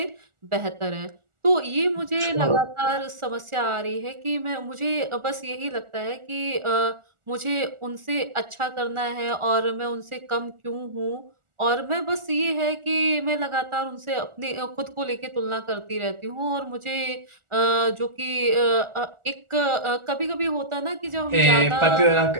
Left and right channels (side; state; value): left; late; 1.4 ms